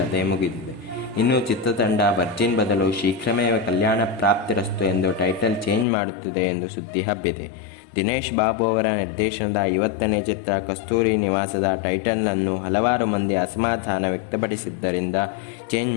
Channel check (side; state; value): right; drops out; at 5.9 s